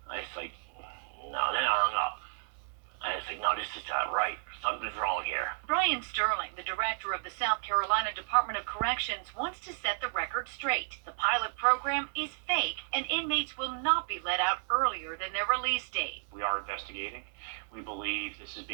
I was like, no, then I hung up. I was like, no, this is not right. Something's wrong here. Brian Sterling, the director of the South Carolina Department of Corrections, wants to set the record straight. The pilot program is fake, and inmates will not be let out earlier than their release date. We are investigating. We believe this is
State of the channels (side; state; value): left; silent; digital silence